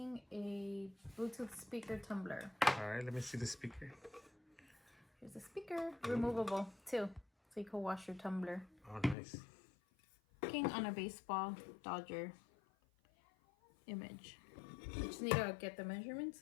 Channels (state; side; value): drops out; right; at 9.2 s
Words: a Bluetooth speaker tumbler. All right, let me see the speaker. Here's the speaker, removable too, so you can wash your tumbler. Oh, nice. Working on a baseball Dodger image. I just need to get the measurements